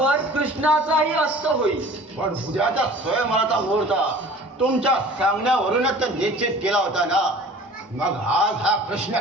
कृष्णाचाही अस्त होईल. पण उद्याचा स्वयंवराचा मुहूर्त तुमच्या सांगण्यावरूनच तर निश्चित केला होता ना. मग आज हा प्रश्न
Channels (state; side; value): normal; both; correlation 0.45